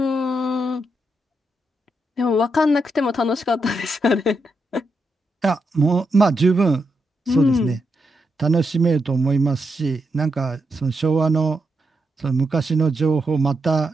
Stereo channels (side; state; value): both; normal; correlation 0.83